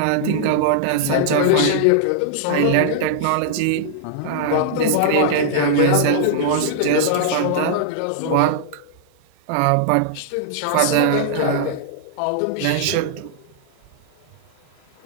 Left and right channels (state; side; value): different; both; correlation -0.01